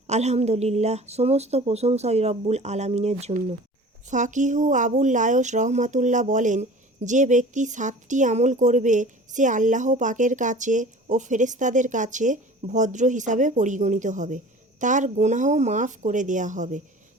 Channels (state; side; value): normal; both; correlation 0.42